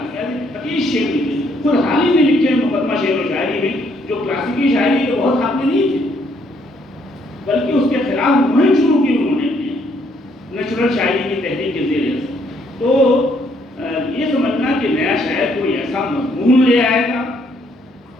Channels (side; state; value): both; normal; correlation 0.69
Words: یعنی 25 شعر لکھے خود حال ہی میں لکھے مقدمہ شعر و شاعری میں، جو کلاسیکی شاعری کے بہت حق میں نہیں تھے، بلکہ اس کے خلاف مہم شروع کی انہوں نے نیچرل شاعری کی تحریک کے ذریعے سے۔ تو یہ سمجھنا کہ نیا شاعر کوئی ایسا مضمون لے آئے گا